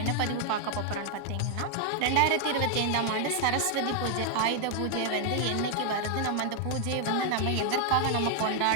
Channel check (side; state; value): both; different; correlation 0.00